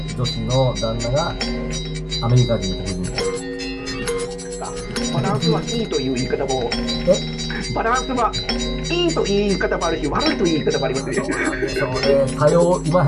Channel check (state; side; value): identical; both; correlation 1.00